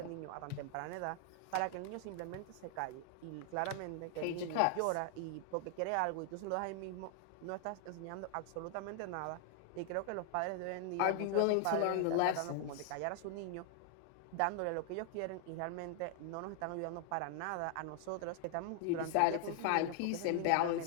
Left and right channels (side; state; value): both; different; correlation 0.00